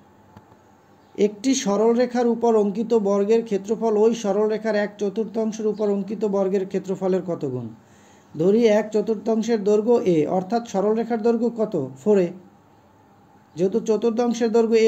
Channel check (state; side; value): identical; both; correlation 1.00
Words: একটি সরলরেখার উপর অঙ্কিত বর্গের ক্ষেত্রফল ওই সরলরেখার 1/4 উপর অঙ্কিত বর্গের ক্ষেত্রফলের কত গুণ? ধরি 1/4 দৈর্ঘ্য এ, অর্থাৎ সরলরেখার দৈর্ঘ্য কত? 4a। যেহেতু চতুর্থাংশের দৈর্ঘ্য